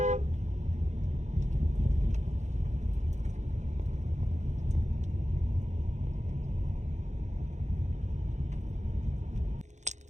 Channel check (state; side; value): late; left; 0.34 ms